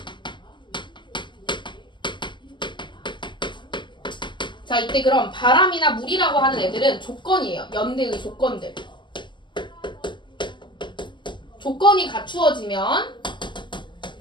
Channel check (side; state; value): right; late; 0.22 ms